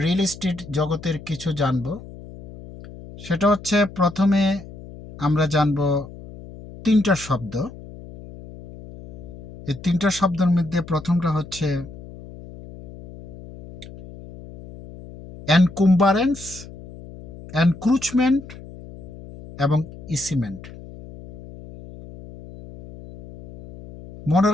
রিয়েল এস্টেট জগতের কিছু জানব। সেটা হচ্ছে প্রথমে আমরা জানব তিনটা শব্দ। এই তিনটা শব্দের মধ্যে প্রথমটা হচ্ছে এনকুম্বারেন্স, এনক্রুচমেন্ট এবং ইসিমেন্ট। মনে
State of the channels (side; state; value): left; noise; hum, 16 dB below the sound